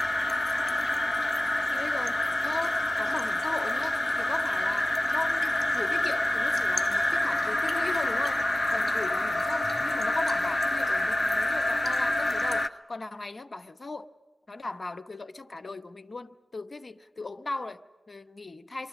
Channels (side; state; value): both; normal; correlation 0.96